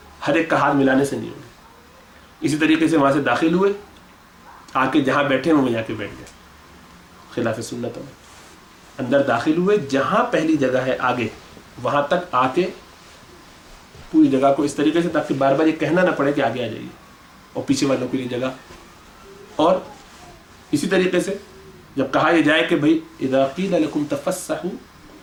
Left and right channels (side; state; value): both; identical; correlation 1.00